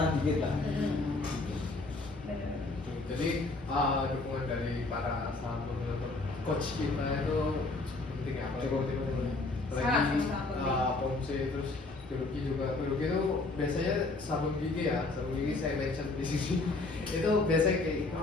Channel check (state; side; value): quieter; right; 3.4 dB